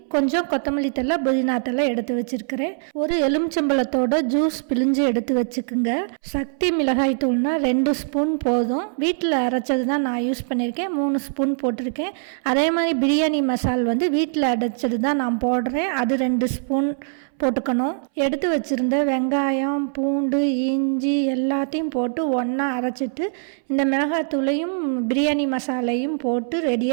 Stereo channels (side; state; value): left; silent; 63 dB below the other